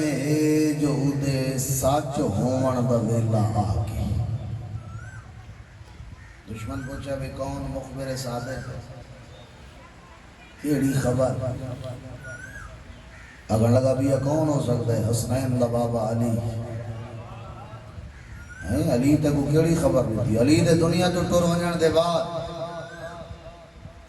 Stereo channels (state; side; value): identical; both; correlation 1.00